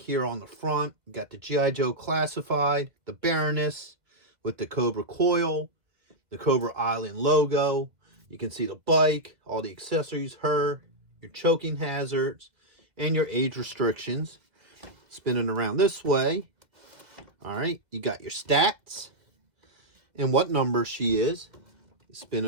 here on the front. You got the G.I. Joe classified, the Baroness with the Cobra Coil, the Cobra Island logo. You can see the bike, all the accessories, her, your choking hazards, and your age restrictions. Spinning around this way. All right, you got your stats and what number she is.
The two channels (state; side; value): late; left; 1.9 ms